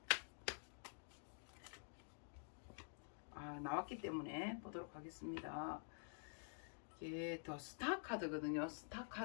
나왔기 때문에 보도록 하겠습니다. 이게 더 스타 카드거든요. 스타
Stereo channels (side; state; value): right; silent; digital silence